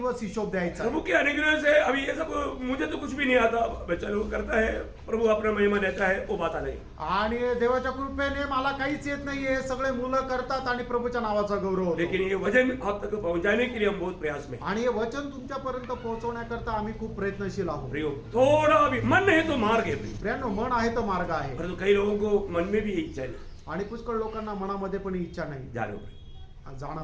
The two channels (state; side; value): identical; both; correlation 1.00